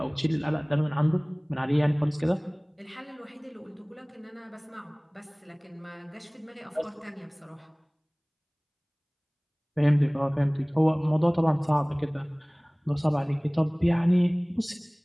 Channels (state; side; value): identical; both; correlation 1.00